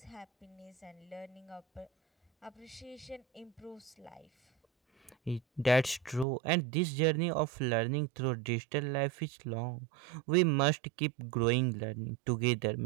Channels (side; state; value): left; drops out; at 6.2 s